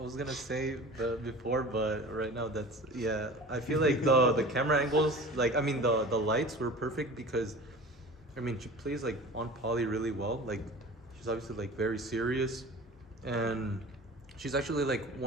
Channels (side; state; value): both; normal; correlation 0.39